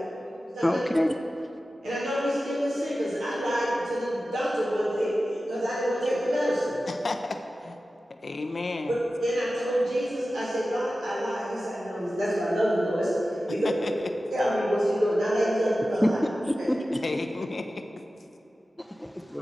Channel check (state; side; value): normal; both; correlation 0.94